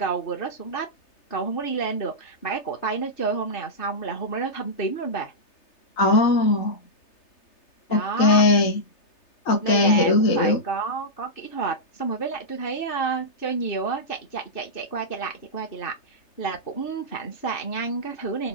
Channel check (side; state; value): right; late; 3.3 ms